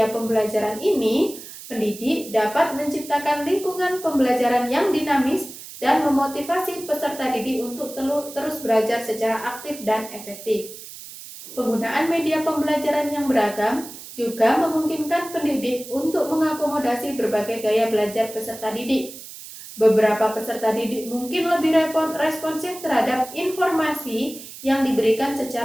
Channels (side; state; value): right; noise; hiss, 14 dB below the sound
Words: pembelajaran ini, pendidik dapat menciptakan lingkungan pembelajaran yang dinamis dan memotivasi peserta didik untuk terus belajar secara aktif dan efektif. Penggunaan media pembelajaran yang beragam juga memungkinkan pendidik untuk mengakomodasi berbagai gaya belajar peserta didik. Beberapa peserta didik mungkin lebih responsif terhadap informasi yang diberikan